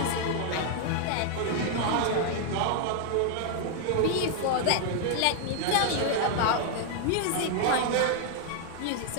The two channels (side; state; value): both; different; correlation 0.00